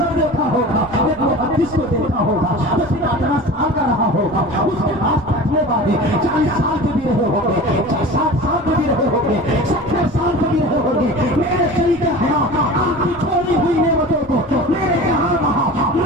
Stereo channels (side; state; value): both; normal; correlation 0.36